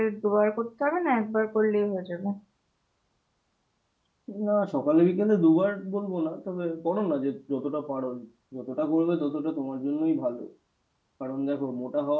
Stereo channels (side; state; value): both; identical; correlation 1.00